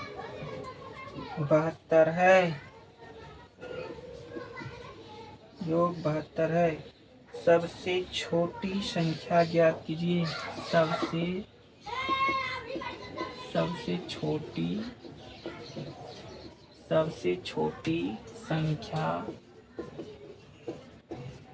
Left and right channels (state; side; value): identical; both; correlation 1.00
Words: 72 है, योग 72 है। सबसे छोटी संख्या ज्ञात कीजिए, सबसे छोटी संख्या